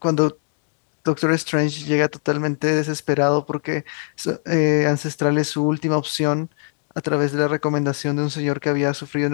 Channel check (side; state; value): right; silent; 65 dB below the other